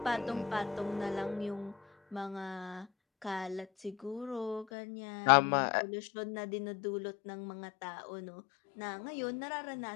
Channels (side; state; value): right; drops out; at 4.7 s